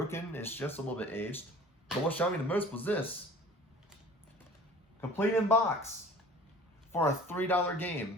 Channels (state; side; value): normal; both; correlation 0.45